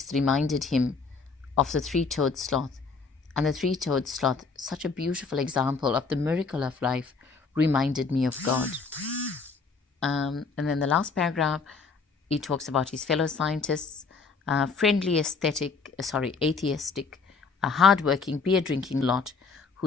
reminded him of the three-toed sloth. And the three-toed sloth, such a beautiful example of the miracle of life, reminded me of God. And then the last paragraph, he talks about his fellow scientists, friendly, atheistic, a hardworking, beer-drinking lot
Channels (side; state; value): right; quieter; 4.7 dB